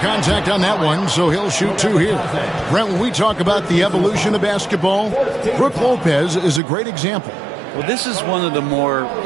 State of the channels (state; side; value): drops out; left; at 6.6 s